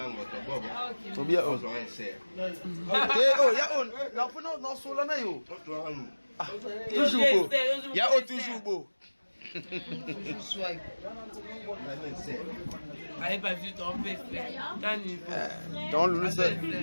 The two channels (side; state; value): both; inverted; correlation -1.00